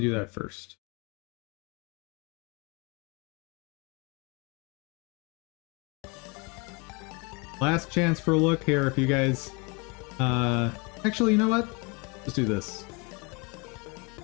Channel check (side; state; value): right; quieter; 30.1 dB